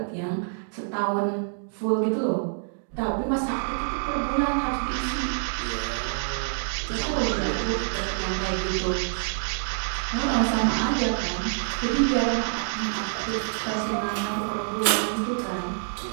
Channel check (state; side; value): silent; left; digital silence